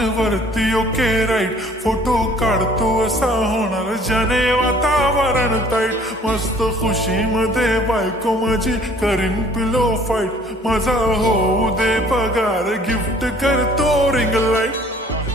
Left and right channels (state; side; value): normal; both; correlation 0.55